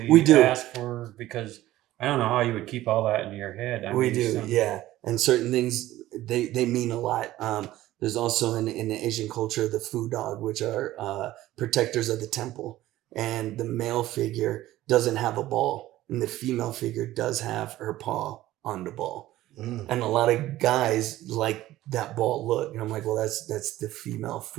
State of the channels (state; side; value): quieter; left; 15.4 dB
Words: asks for, because I don't know how you would keep all that in your head. Yeah. And certain things, they mean a lot. There's also in the Asian culture, the Fu dog, which are protectors of the temple. And the male figure doesn't have a ball, and the female figure does have her paw on the ball. And a lot of guys like that bald look. And I'm like, well, that's the female